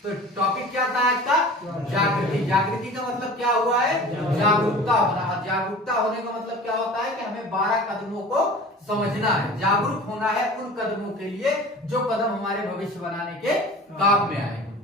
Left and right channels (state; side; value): normal; both; correlation 0.40